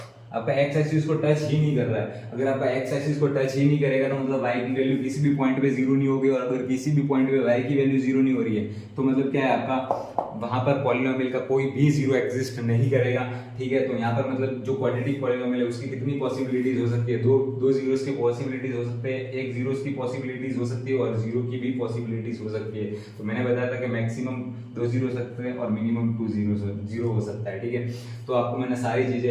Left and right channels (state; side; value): identical; both; correlation 1.00